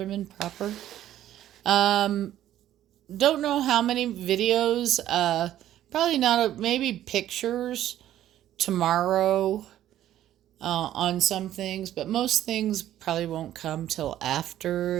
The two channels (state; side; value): quieter; left; 12.4 dB